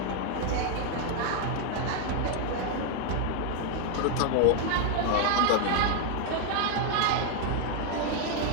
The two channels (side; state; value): both; different; correlation 0.01